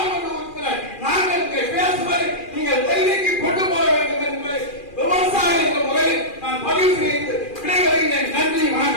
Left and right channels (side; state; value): right; late; 2.4 ms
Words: உறுப்பினர் நாங்கள் இங்கே பேசுவதை நீங்கள் டெல்லிக்கு கொண்டு போக வேண்டும் என்பதை விவசாய என்ற முறையில் நான் பதிவு செய்து விடைபெறுகிறேன். நன்றி,